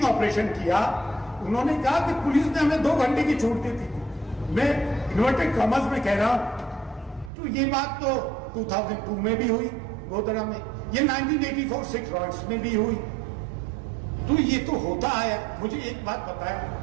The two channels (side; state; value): left; drops out; at 7.3 s